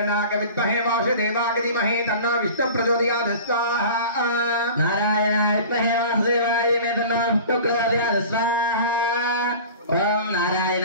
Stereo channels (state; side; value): inverted; both; correlation -0.39